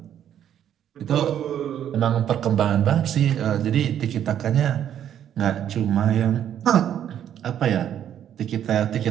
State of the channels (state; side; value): quieter; left; 10.0 dB